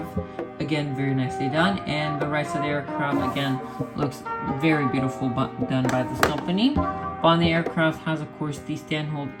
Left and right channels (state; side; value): identical; both; correlation 1.00